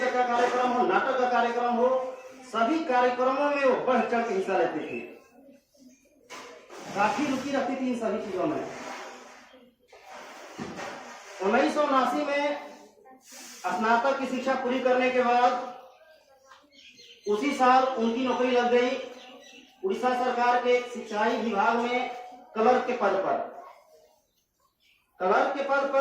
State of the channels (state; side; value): identical; both; correlation 1.00